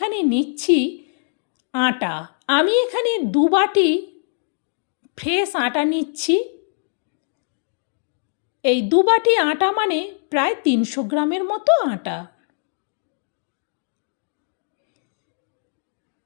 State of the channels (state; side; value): silent; right; digital silence